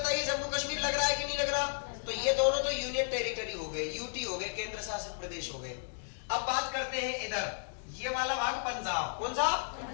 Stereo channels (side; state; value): right; silent; digital silence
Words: जम्मू कश्मीर लग रहा है कि नहीं लग रहा? तो ये दोनों तो यूनियन टेरिटरी हो गए, यूटी हो गए, केंद्र शासित प्रदेश हो गए। अब बात करते हैं इधर ये वाला भाग पंजाब। कौन सा?